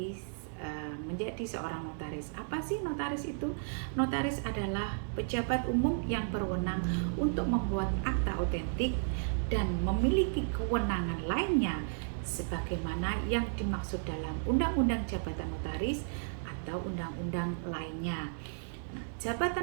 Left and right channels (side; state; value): left; silent; digital silence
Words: menjadi seorang notaris. Apa sih notaris itu? Notaris adalah pejabat umum yang berwenang untuk membuat akta otentik dan memiliki kewenangan lainnya sebagaimana yang dimaksud dalam Undang-Undang Jabatan Notaris atau undang-undang lainnya. Nah,